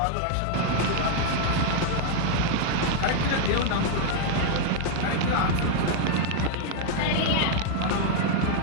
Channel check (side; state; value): both; different; correlation 0.00